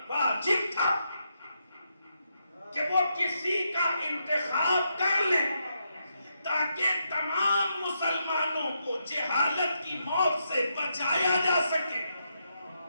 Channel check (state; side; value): inverted; both; correlation -0.82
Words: واجب تھا کہ وہ کسی کا انتخاب کر لیں تاکہ تمام مسلمانوں کو جہالت کی موت سے بچایا جا سکے۔